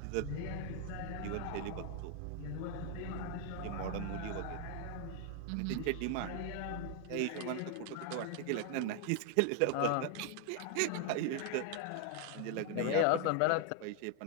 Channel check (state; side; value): different; both; correlation 0.00